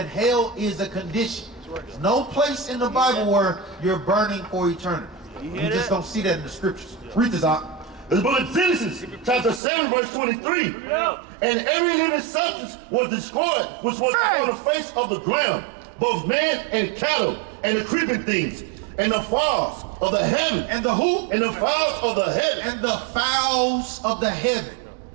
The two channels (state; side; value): drops out; left; at 9.6 s